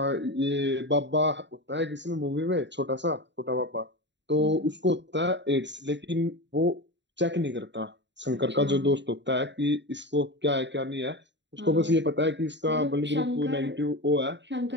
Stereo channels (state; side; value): late; left; 0.52 ms